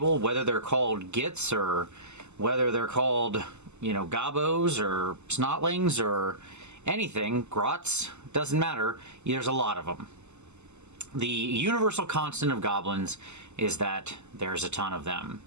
whether they're called gits or whether they're called, you know, gobos or snotlings or anything, grots, doesn't matter, there's a lot of them. The universal constant of goblins is that there's a ton of them.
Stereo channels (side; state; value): left; late; 0.83 ms